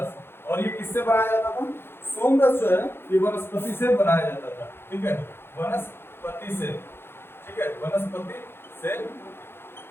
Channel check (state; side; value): late; right; 0.11 ms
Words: और ये किससे बनाया जाता था? सोम रस जो है ये वनस्पति से बनाया जाता था, ठीक है, वनस्पति से, ठीक है, वनस्पति से